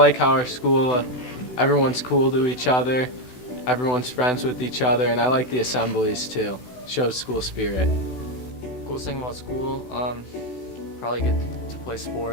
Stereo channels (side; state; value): right; late; 16 ms